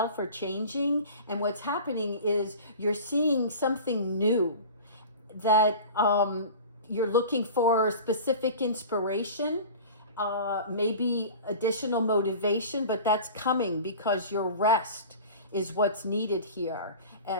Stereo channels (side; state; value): both; inverted; correlation -0.37